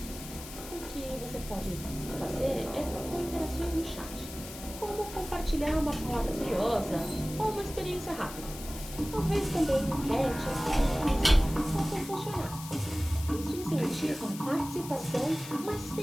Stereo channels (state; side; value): noise; left; hiss, 13 dB below the sound